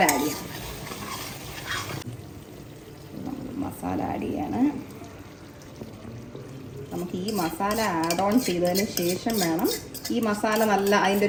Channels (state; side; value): identical; both; correlation 1.00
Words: ആഡ് ചെയ്യാം. മസാല ആഡ് ചെയ്യാണ്. നമുക്ക് ഈ മസാല ആഡ് ഓൺ ചെയ്തതിന് ശേഷം വേണം, ഈ മസാല നല്ല അതിൻ്റെ